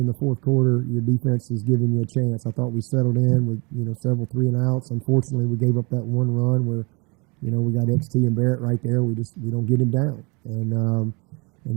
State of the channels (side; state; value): left; quieter; 29.3 dB